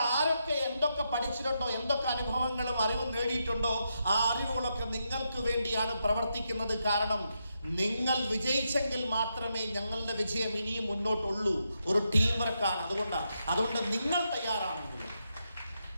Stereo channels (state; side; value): inverted; both; correlation -0.83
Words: ആരൊക്കെ എന്തൊക്കെ പഠിച്ചിട്ടുണ്ടോ, എന്തൊക്കെ അനുഭവങ്ങളും അറിവും നേടിയിട്ടുണ്ടോ, ആ അറിവുകളൊക്കെ നിങ്ങൾക്ക് വേണ്ടിയാണ് പ്രവർത്തിക്കുന്നത്. കാരണം നിങ്ങൾ വിജയിച്ചെങ്കിൽ മാത്രമേ ഞങ്ങളുടെ വിജയം ഇനിയും മുന്നോട്ടുള്ളൂ. ഒരു ടീം വർക്കാണ്. അതുകൊണ്ട്